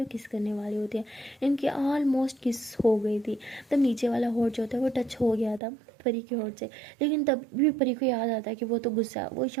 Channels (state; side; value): drops out; left; at 5.6 s